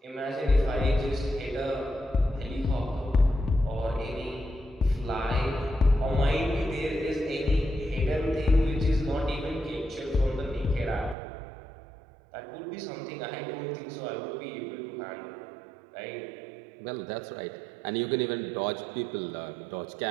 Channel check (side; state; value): left; drops out; at 11.2 s